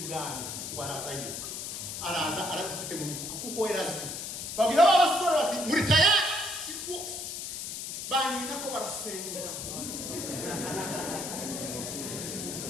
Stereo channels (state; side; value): noise; left; hiss, 6 dB below the sound